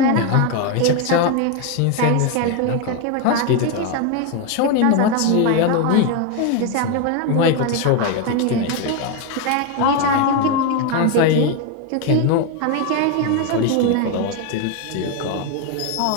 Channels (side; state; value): both; different; correlation 0.02